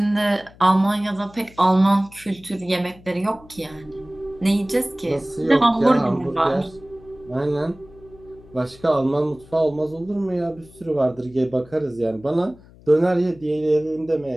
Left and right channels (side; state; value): left; noise; hum, 24 dB below the sound